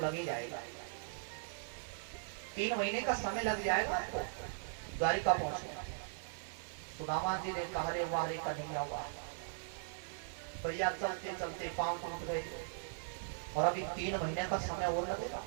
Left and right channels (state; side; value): silent; left; 52 dB below the other